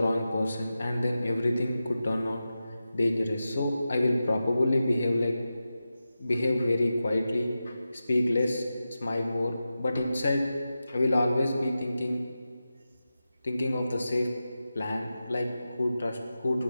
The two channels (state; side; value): inverted; both; correlation -0.92